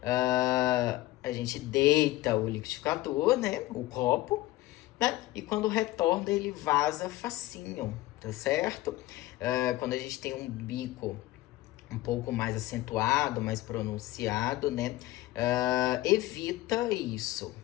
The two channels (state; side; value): quieter; right; 17.0 dB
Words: A gente deita o liquidificador, né? O copo, né? E quando retorna, ele vaza facinho, tá certo? Quando a gente tem um bico um pouco mais acentuado, mais pronunciado, né? Evita isso,